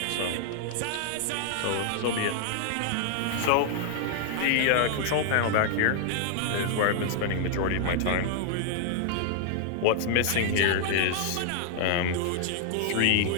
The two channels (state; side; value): different; both; correlation -0.01